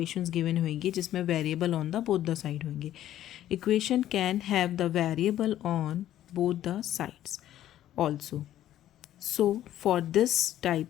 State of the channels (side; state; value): right; quieter; 12.5 dB